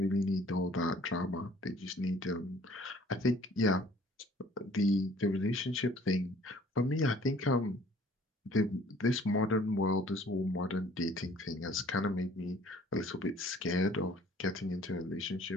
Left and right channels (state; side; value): normal; both; correlation 0.55